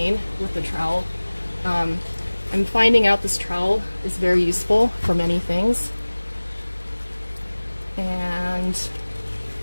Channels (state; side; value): inverted; both; correlation -1.00